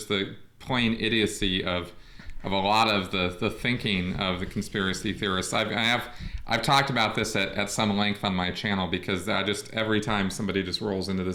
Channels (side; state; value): both; identical; correlation 1.00